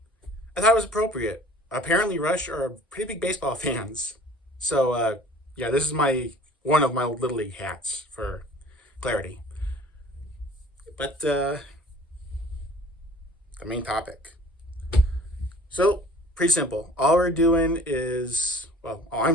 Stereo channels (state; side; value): normal; both; correlation 0.49